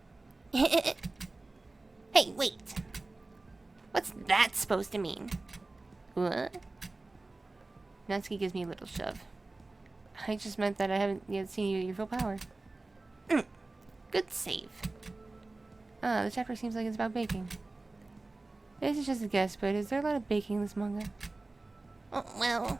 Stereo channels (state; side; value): quieter; left; 3.2 dB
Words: Hey, wait. What's that supposed to mean? What? Natsuki gives me a little shove. I just meant that I haven't yet seen you at your full power. Good save. The chapter seems like it's about baking. This is just a guess, but is there a lot of baking in this manga? Oh, well...